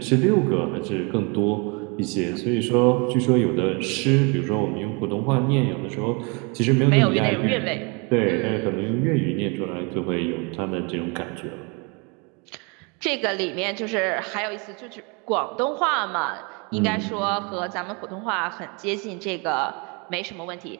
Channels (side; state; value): left; quieter; 31.7 dB